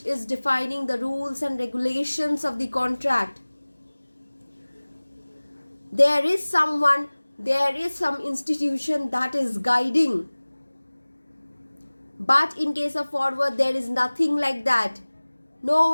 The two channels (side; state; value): both; inverted; correlation -1.00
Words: is defining the rules and regulations of the contract. There is someone, there is some institution that is guiding. But in case of forward, there is nothing like that. No